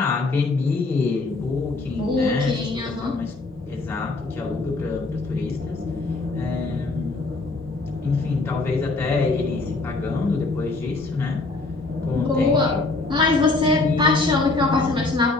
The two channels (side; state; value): right; quieter; 3.3 dB